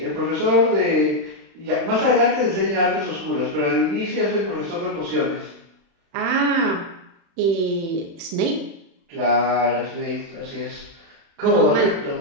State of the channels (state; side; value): late; left; 36 ms